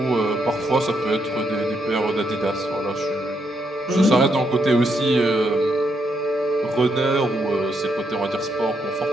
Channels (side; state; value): both; normal; correlation 0.78